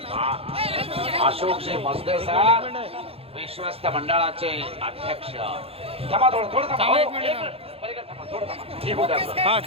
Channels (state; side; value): late; left; 0.28 ms